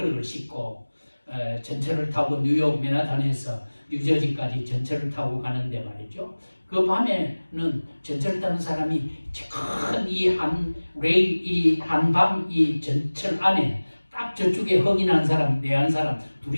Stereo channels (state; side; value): inverted; both; correlation -1.00